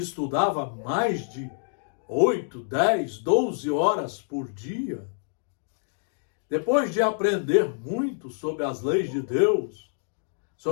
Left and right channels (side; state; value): right; silent; digital silence